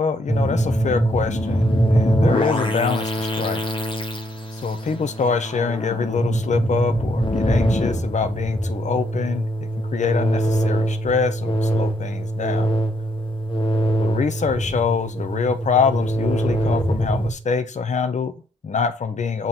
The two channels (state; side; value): normal; both; correlation 0.71